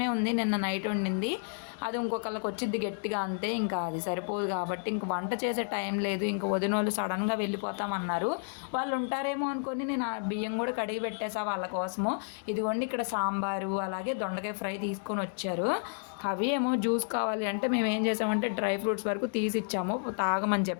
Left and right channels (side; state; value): right; silent; 57 dB below the other